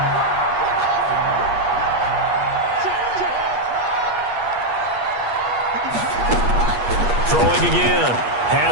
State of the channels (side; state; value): left; late; 8.4 ms